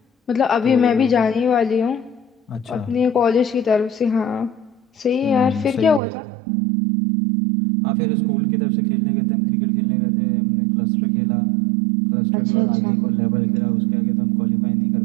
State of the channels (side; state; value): left; drops out; at 6.0 s